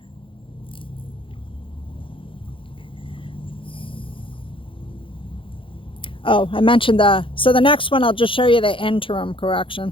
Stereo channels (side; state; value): right; late; 0.25 ms